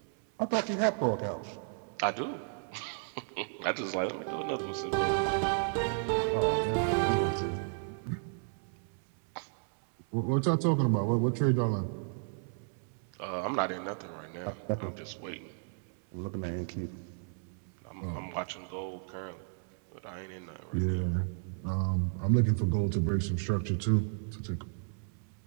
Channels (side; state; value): left; silent; 56 dB below the other